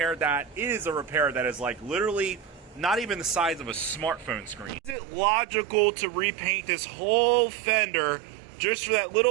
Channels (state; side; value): drops out; left; at 5.0 s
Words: that. It is a repair that is like literally not even the size of a smartphone screen. Is it logical to repaint this whole fender just for that